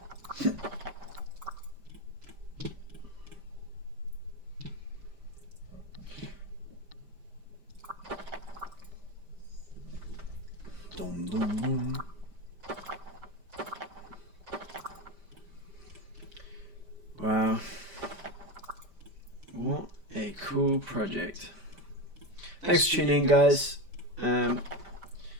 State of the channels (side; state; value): left; late; 5.1 ms